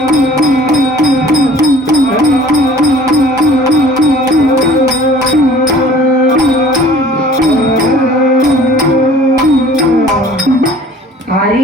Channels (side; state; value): both; normal; correlation 0.50